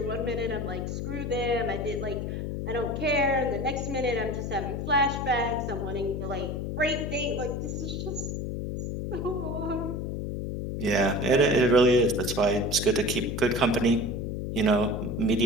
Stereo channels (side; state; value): left; noise; hum, 3 dB below the sound